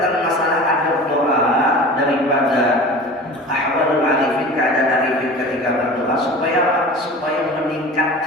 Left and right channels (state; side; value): normal; both; correlation 0.37